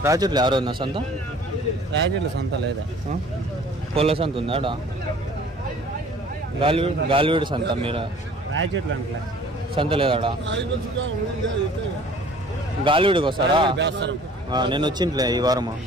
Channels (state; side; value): normal; both; correlation 0.51